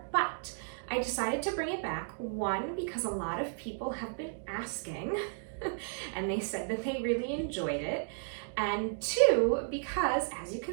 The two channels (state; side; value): silent; left; digital silence